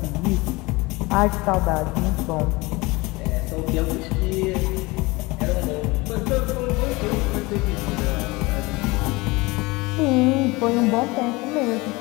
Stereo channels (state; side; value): quieter; right; 23.3 dB